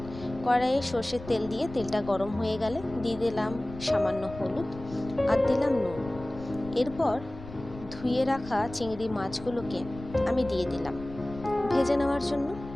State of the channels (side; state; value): left; noise; rumble, 14 dB below the sound